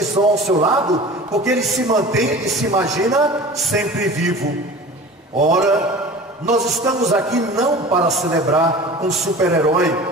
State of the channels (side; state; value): both; normal; correlation 0.39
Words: estão ao seu lado, porque ele se mantém e se imagina sempre vivo. Ora, nós estamos aqui não para celebrar um super-herói,